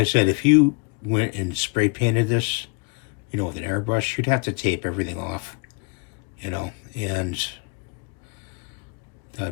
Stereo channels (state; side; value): quieter; right; 33.0 dB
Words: said, if you went and spray painted this, you know, with an airbrush, you'd have to tape everything off, you know, and